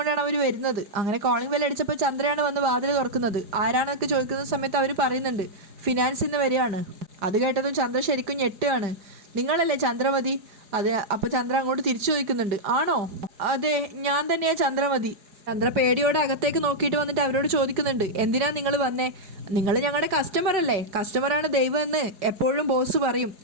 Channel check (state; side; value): late; left; 4.8 ms